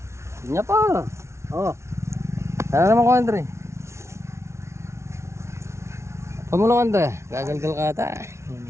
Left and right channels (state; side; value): late; left; 0.13 ms